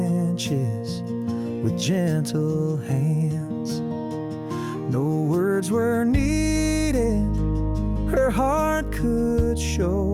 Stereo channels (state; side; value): identical; both; correlation 1.00